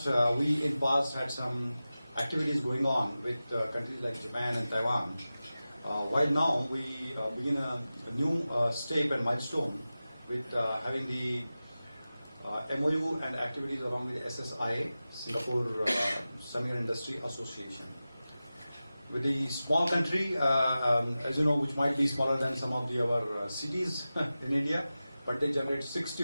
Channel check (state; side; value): inverted; both; correlation -0.95